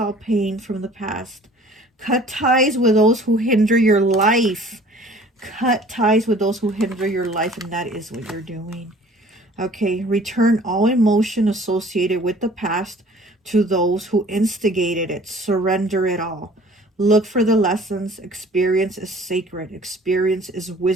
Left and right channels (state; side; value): normal; both; correlation 0.50